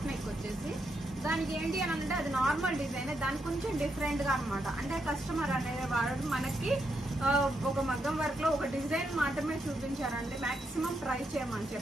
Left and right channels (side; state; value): both; normal; correlation 0.81